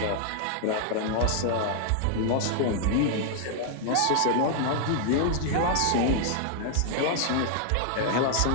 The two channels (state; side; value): different; both; correlation 0.00